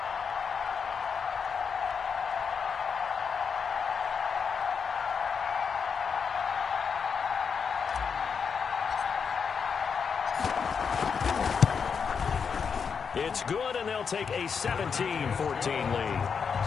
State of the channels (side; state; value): right; quieter; 6.2 dB